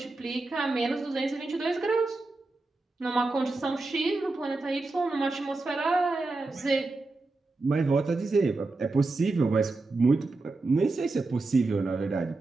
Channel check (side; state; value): left; quieter; 3.4 dB